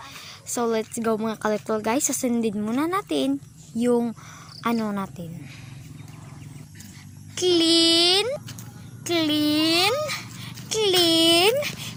So, let's go mga ka-little guys. Sasundin muna natin yung ano natin. Clean.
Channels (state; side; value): identical; both; correlation 1.00